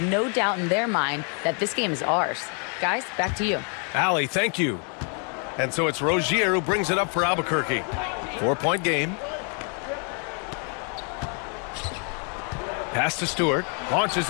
no doubt in their mind that this game is ours. Guys, back to you. Allie, thank you. And so it's Rozier who brings it up for Albuquerque. 4-point game. Pass to Stewart. Launches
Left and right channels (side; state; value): right; quieter; 39.5 dB